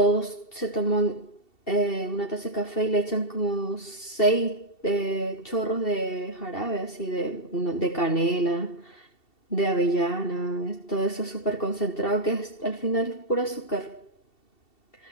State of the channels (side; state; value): right; late; 2.7 ms